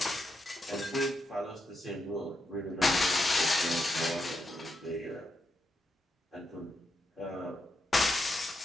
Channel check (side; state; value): both; normal; correlation 0.83